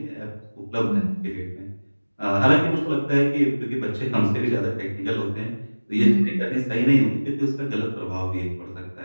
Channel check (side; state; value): both; inverted; correlation -1.00